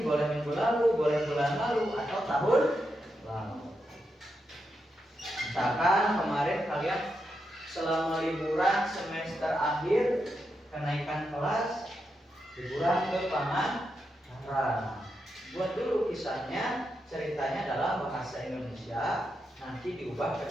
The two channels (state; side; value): normal; both; correlation 0.85